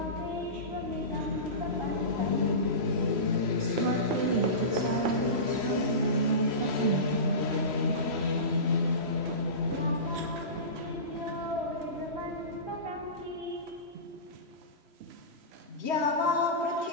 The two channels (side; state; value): left; late; 3.0 ms